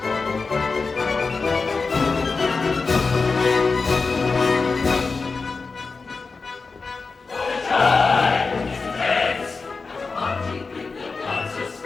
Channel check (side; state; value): right; quieter; 4.3 dB